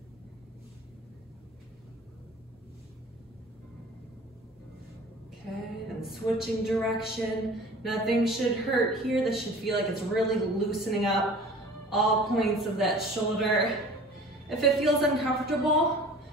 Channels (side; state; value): both; normal; correlation 0.44